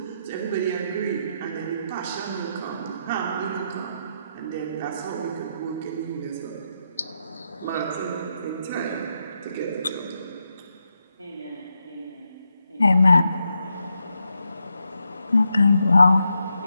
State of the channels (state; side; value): inverted; both; correlation -0.83